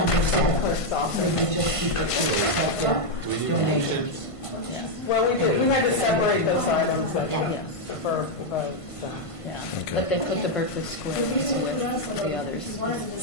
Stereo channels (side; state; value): right; late; 1.5 ms